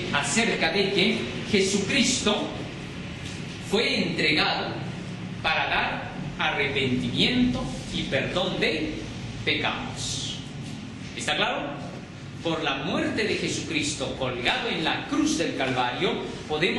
acerca de que Jesucristo fue entregado para dar arrepentimiento y perdón de pecados. ¿Está claro? Por la muerte de Jesucristo colgado en la cruz del Calvario,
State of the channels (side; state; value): both; identical; correlation 1.00